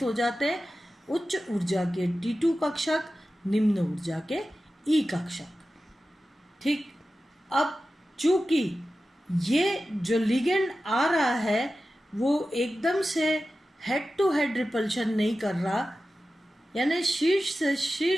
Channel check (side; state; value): both; normal; correlation 0.94